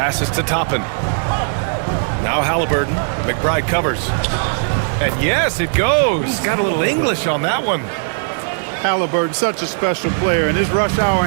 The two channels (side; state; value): left; silent; digital silence